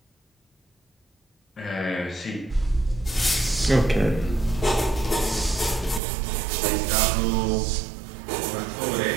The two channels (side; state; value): left; drops out; at 6.0 s